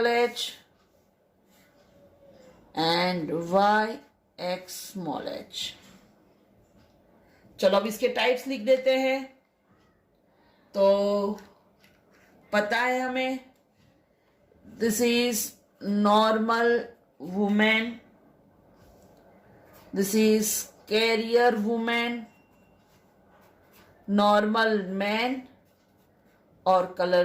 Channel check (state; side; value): identical; both; correlation 1.00